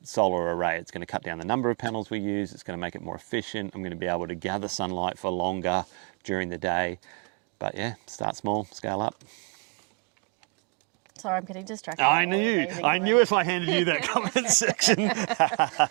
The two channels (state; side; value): quieter; left; 36.0 dB